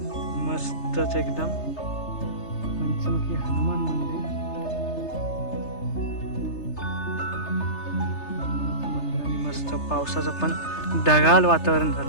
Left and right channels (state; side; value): late; right; 3.3 ms